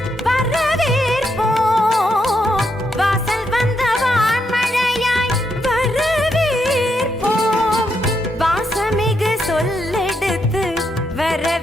வரவேற்போம் வாசல் வந்த வான்மழையாய் வரவேற்போம் வாசமிகு சொல்லெடுத்து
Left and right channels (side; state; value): both; normal; correlation 0.80